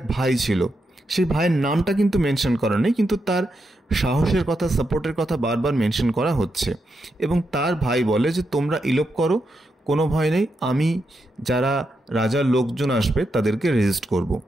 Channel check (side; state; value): both; normal; correlation 0.84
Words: ভাই ছিল। সেই ভাইয়ের নামটা কিন্তু মেনশন করা নেই, কিন্তু তার সাহসের কথা, সাপোর্টের কথা বারবার মেনশন করা হচ্ছে। এবং তার ভাই বলে যে তোমরা ইলোপ করো, কোনো ভয় নেই, আমি যারা রাজার লোকজন আসবে তাদেরকে রেজিস্ট করব।